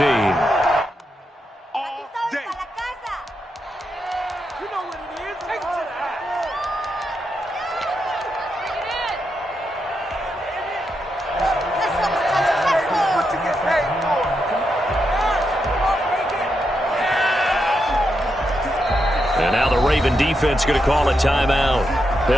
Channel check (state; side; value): normal; both; correlation 0.84